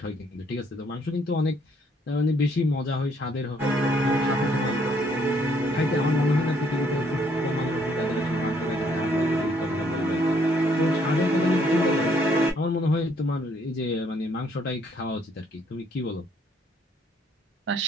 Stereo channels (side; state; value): both; normal; correlation 0.67